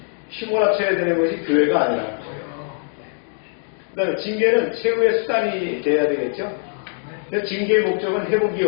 휘몰아쳐야 되는 것이 교회가 아니라. 그 다음에 징계는 최후의 수단이 돼야 되겠죠. 그래서 징계의 목적은 회복의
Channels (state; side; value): silent; right; 64 dB below the other